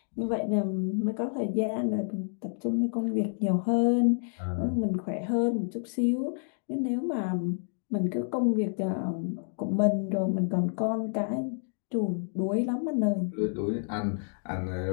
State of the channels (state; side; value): silent; right; digital silence